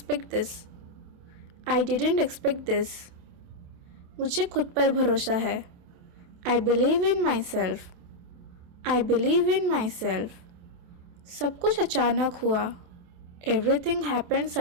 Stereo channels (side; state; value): left; late; 28 ms